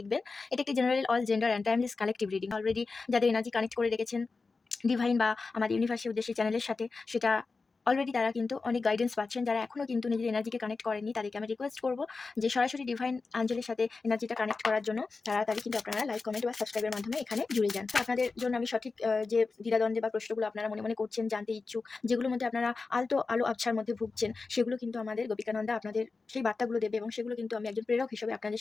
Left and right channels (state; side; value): quieter; right; 4.1 dB